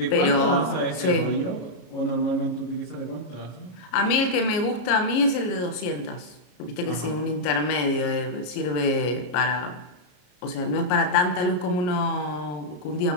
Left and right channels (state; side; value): late; right; 33 ms